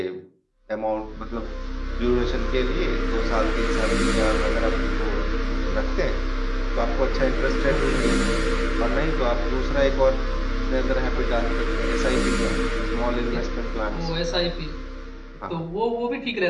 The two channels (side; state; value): both; identical; correlation 1.00